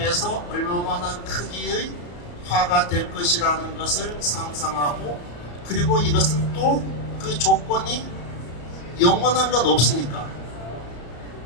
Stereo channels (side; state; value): right; late; 34 ms